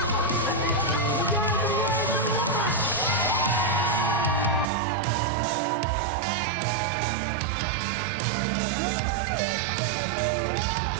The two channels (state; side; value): drops out; left; at 4.7 s